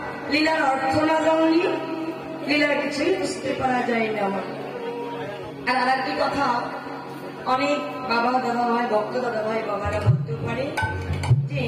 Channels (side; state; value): both; identical; correlation 1.00